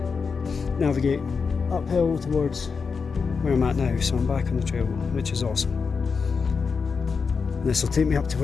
navigate uphill towards where I'm at now. So I'm back on the trail, which is awesome. This will take me up to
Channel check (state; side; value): quieter; right; 5.3 dB